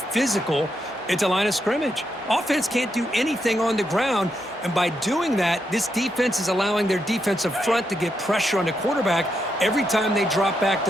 physical at the line of scrimmage. Offense can't do anything on the ground, and by doing that, this defense is allowing their defensive front to get pressure on the quarterback. Every time they drop back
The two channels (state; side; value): normal; both; correlation 0.82